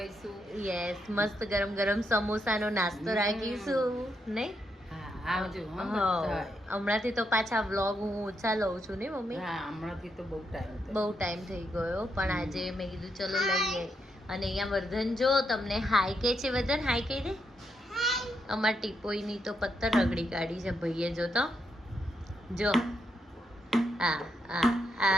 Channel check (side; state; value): both; normal; correlation 0.80